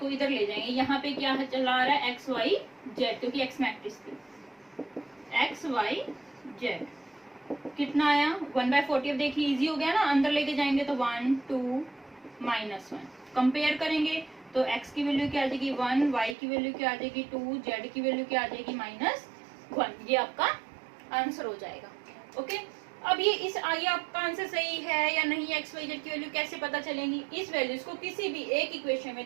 इधर ले जाएंगे। यहाँ पे क्या चला आ रहा है एक्स वाई जेड, क्योंकि एक्स मैट्रिक्स थी। एक्स वाई जेड कितना आया 1/40। अब देखिए इजी हो गया ना, अंदर लेके जाएंगे तो 1 2 -1। कंपेयर करेंगे तो x की वैल्यू क्या आ जाएगी 1, y की वैल्यू क्या आ जाएगी 2, z की वैल्यू क्या आ जाएगी -1। ये आपका आंसर हो जाएगा। ओके, अब ये आपका आंसर सही है या नहीं, एक्स वाई जेड की वैल्यू कैसे पता चलेंगी। इस वैल्यूज को किसी भी एक इक्वेशन में,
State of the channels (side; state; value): left; drops out; at 16.4 s